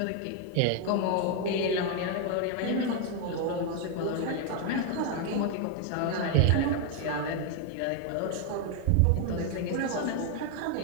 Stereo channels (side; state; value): both; different; correlation 0.01